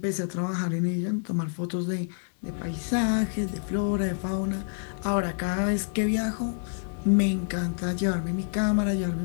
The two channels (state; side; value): silent; right; digital silence